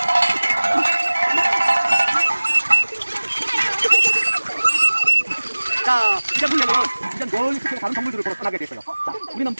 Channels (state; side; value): inverted; both; correlation -1.00